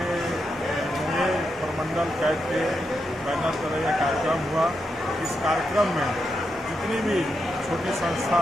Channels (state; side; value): normal; both; correlation 0.85